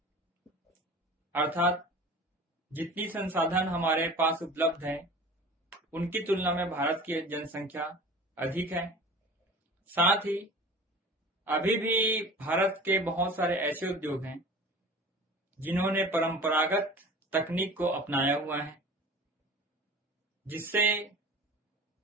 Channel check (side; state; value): both; normal; correlation 0.40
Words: अर्थात जितनी संसाधन हमारे पास उपलब्ध है उनकी तुलना में भारत की जनसंख्या अधिक है। साथ ही अभी भी भारत के बहुत सारे ऐसे उद्योग हैं जिन्होंने परंपरागत तकनीक को अपनाया हुआ है, जिससे